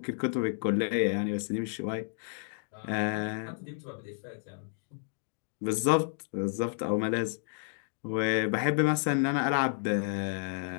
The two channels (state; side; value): silent; right; digital silence